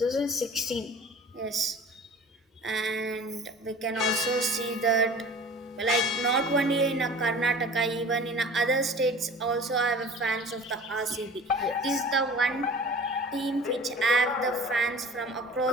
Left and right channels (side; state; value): both; normal; correlation 0.42